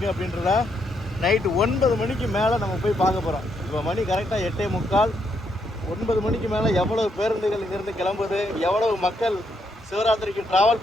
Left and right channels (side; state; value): both; normal; correlation 0.77